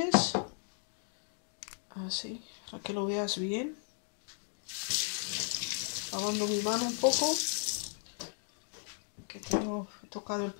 así, para que lo veas bien, lavando mi mano un poco, que tengo tocado el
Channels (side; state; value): right; silent; 54 dB below the other